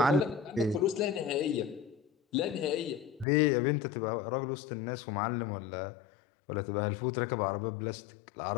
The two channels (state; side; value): drops out; right; at 3.2 s